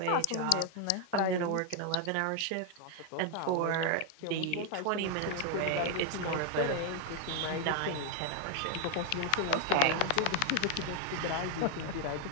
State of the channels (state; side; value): different; both; correlation 0.01